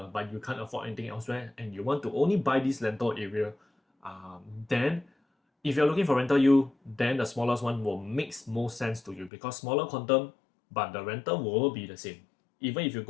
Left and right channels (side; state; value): right; drops out; at 9.3 s